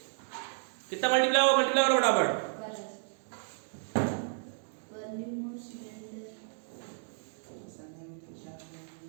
कितना मल्टीप्लाई होगा, मल्टीप्लाई करो फटाफट।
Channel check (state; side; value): silent; left; digital silence